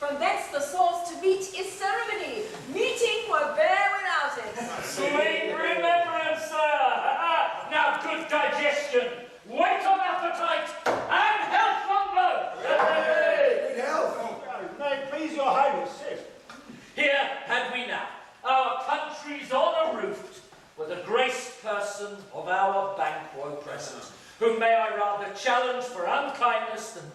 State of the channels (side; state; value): both; identical; correlation 1.00